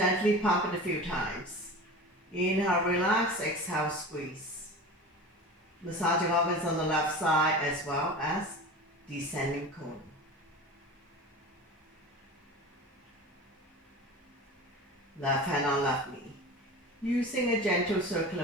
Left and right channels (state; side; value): normal; both; correlation 0.33